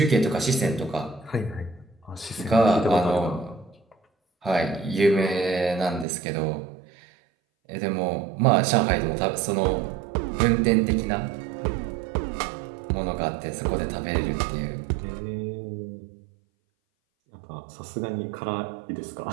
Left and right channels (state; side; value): drops out; left; at 6.1 s